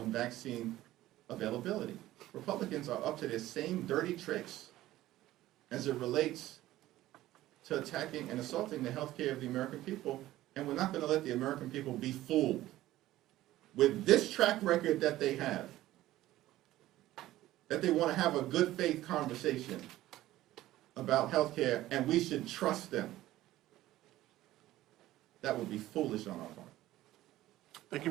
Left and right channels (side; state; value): left; quieter; 15.3 dB